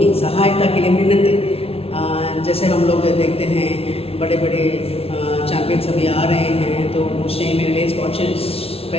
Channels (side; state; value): right; late; 0.28 ms